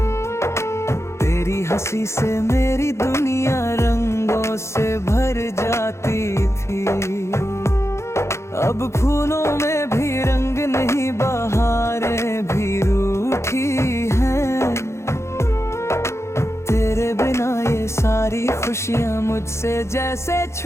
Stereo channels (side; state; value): right; late; 0.13 ms